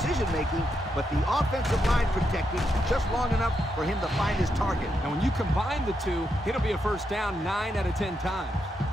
but the offensive line protected just long enough for him to find his target. And when you combine the two, it'll be a first down 9 out of 10 times.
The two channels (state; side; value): normal; both; correlation 0.82